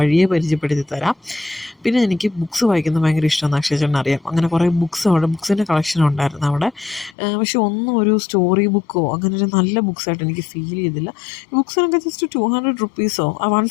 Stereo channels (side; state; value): right; drops out; at 7.2 s